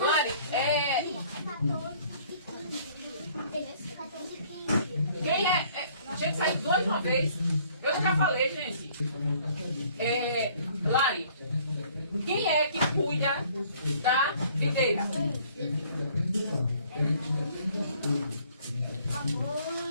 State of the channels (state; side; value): inverted; both; correlation -0.58